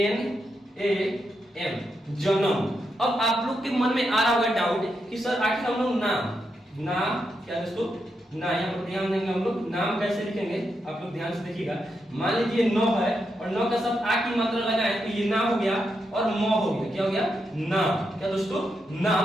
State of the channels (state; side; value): normal; both; correlation 0.84